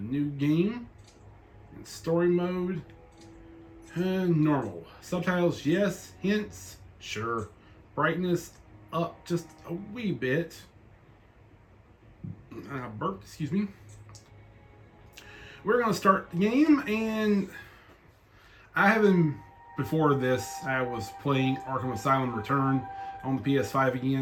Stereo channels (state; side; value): identical; both; correlation 1.00